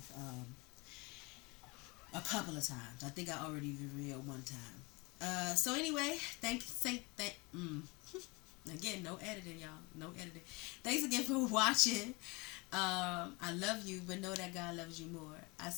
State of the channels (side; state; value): right; quieter; 26.8 dB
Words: a couple of times. I think I already revealed one time. So anyway, again, no editing, y'all. No editing. Thanks again for watching. I love you, but know that God loves you more. I'll